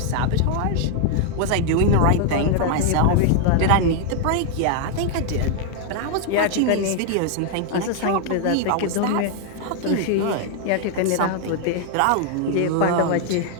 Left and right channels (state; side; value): different; both; correlation 0.00